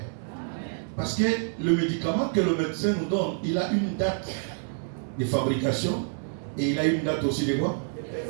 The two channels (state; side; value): silent; left; digital silence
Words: Parce que le médicament que le médecin nous donne, il a une date de fabrication et il a une date aussi de quoi?